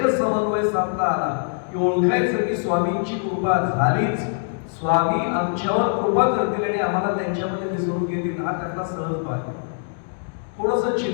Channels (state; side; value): silent; right; digital silence